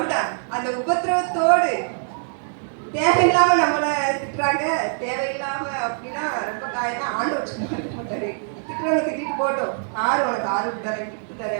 அந்த உபத்திரவத்தோடு தேவையில்லாம நம்மளை திட்டுறாங்க, தேவையில்லாம அப்படின்னா ரொம்ப காயமா ஆண்டு வச்சுக்க மாட்டாரு. திட்டுறவங்க திட்டிட்டு போட்டோம், ஆறு உனக்கு ஆறு தரேன் கிஃப்ட்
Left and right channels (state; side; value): silent; left; digital silence